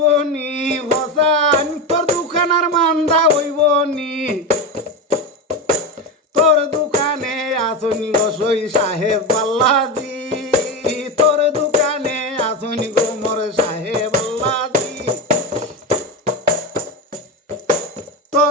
নি হোসান, তোর দোকান আর মান্দা হইব নি, তোর দোকানে আসনি গোসই সাহেব আল্লাজি, তোর দোকানে আসনি গো মোর সাহেব আল্লাজি,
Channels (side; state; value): both; normal; correlation 0.17